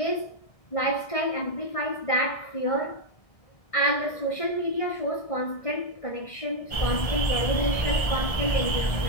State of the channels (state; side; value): late; right; 1.6 ms